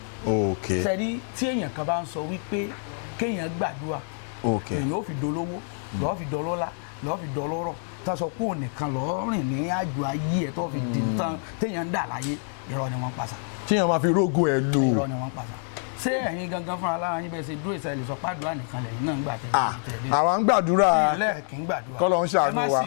ok sẹ́rí tí èèyàn kan bá ń sọ wípé kéèyàn gbàdúrà èèyàn ó fi dolówó lọ́ọ́ fi dọlọ́lá lọ́ọ́ fi dọlọ́rọ̀ tá a sọ pé òun nìkan lọ́ọ́ rìn ní àjò ayé ẹ̀ tó fi di tán téèyàn ń dà láyé irọ́ ni wọ́n ń pàṣà. téèyàn máa fi rógùn ẹ̀ lò. irọ́ ni wọ́n ń pàṣà. ṣé ẹ̀yin gangan fúnra lára yín bẹ́ẹ̀ ṣe dúró ìṣẹ̀lẹ̀ sọ pàdúrà nìkan lẹ́yìn náà ń gbà tẹ̀lé. àwa ń gbàdúrà. ilé kì í gbàdúrà kọ́lọ́ ń ṣàánú wa. ẹ má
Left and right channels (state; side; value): silent; right; 59 dB below the other